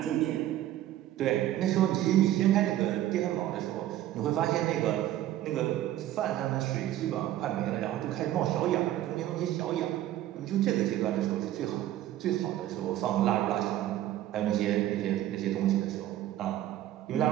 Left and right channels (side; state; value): left; quieter; 13.4 dB